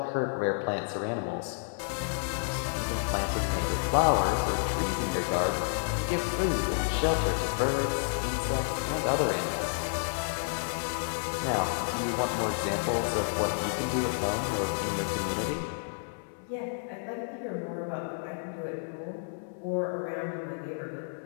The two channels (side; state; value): right; silent; 58 dB below the other